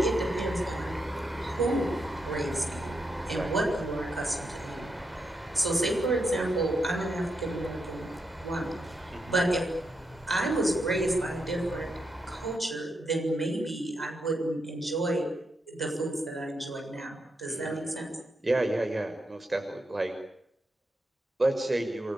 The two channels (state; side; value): normal; both; correlation 0.83